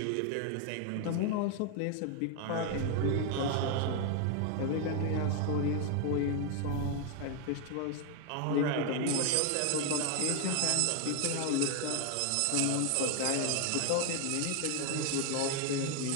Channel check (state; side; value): different; both; correlation 0.01